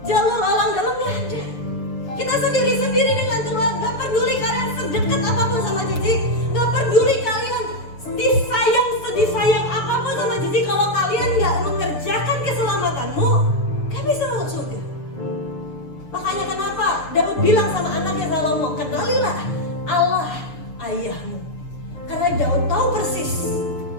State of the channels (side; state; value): right; late; 6.8 ms